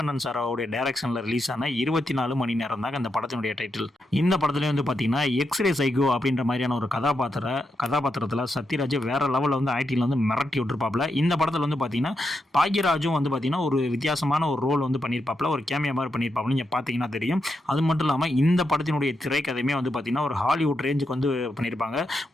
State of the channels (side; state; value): both; normal; correlation 0.84